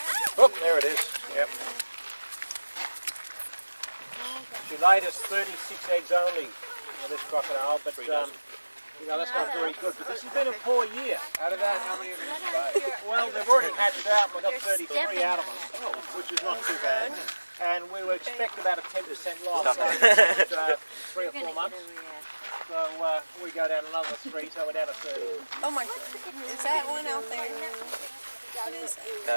Oh, there it is. Yep. She laid us 36 eggs only, this crocodile, but you know, that's not very good. But this has been a poor year. Out of that, how many of you survived? Well, they've already hatched out, and we've got 33 out of them, which is not too bad. And we would expect about a 10% loss over 3 or 4 months. So we go down another 3, so we're down to 30. Oh my God. Is that one out there? What is it?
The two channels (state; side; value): inverted; both; correlation -1.00